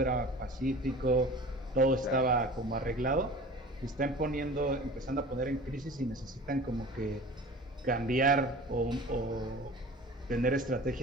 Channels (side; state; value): both; normal; correlation 0.40